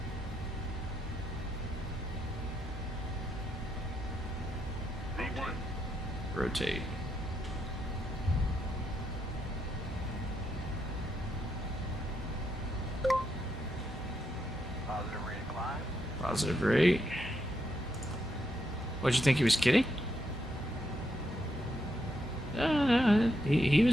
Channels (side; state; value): both; normal; correlation 0.80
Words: Rotate. Positive rate of climb. Positive rate. What'd you think he was kidding? He